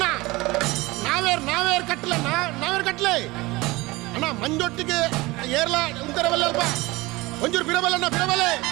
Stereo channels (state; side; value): quieter; left; 21.4 dB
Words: ನಾವೇರ್ ಕಟ್ಲೆ ಅಣ್ಣ ಮಂಜೊಟ್ಟಿಗೆ ಏರ್ಲ ಉಂತರವಲ್ಲಲ್ಪ ಒಂಚೂರು ಬಿಡಬಲ್ಲಣ್ಣ